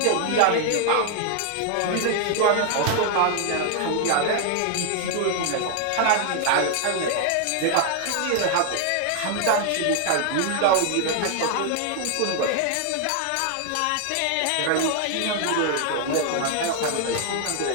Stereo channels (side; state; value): both; different; correlation 0.00